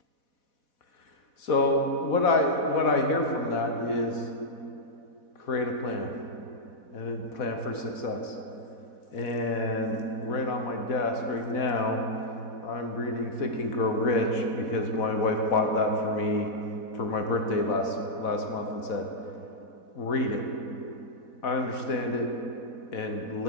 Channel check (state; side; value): late; right; 4.1 ms